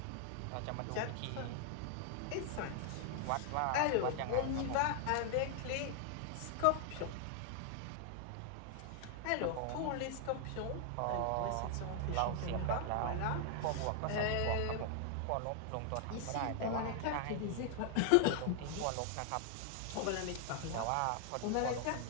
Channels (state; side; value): different; both; correlation 0.00